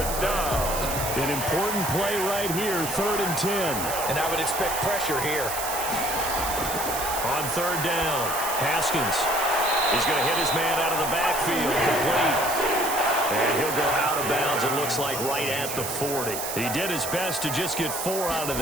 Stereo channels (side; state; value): right; noise; hiss, 5 dB below the sound